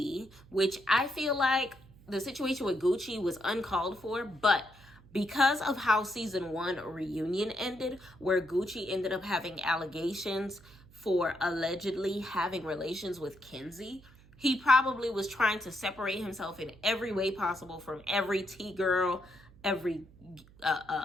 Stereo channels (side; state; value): right; noise; hum, 24 dB below the sound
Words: which I feel like the situation with Gucci was uncalled for, but because of how season 1 reunion ended, where Gucci ended up having allegations for allegedly having relations with Kenzie, he probably was trying to separate himself in every way possible from every T-girl, every